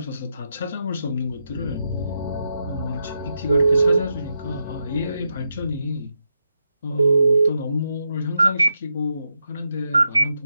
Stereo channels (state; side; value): inverted; both; correlation -0.85